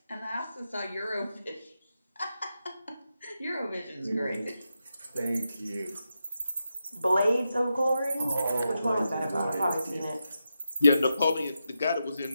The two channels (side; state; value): both; inverted; correlation -0.87